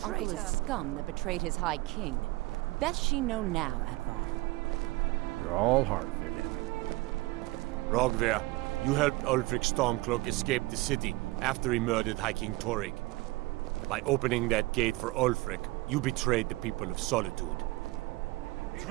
Traitor! is scum that betrayed his High King. Best she know now, Advar. You're all heart, Vivian. Rogvir, you helped Ulfric Stormcloak escape the city after he murdered High King Torrig. By opening that gate for Ulfric, you betrayed the people of Solitude.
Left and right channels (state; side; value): quieter; left; 21.3 dB